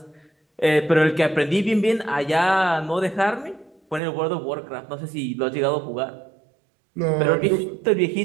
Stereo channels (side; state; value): left; drops out; at 4.0 s